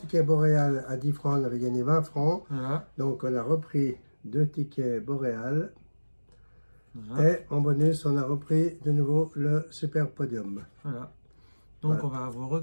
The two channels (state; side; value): inverted; both; correlation -1.00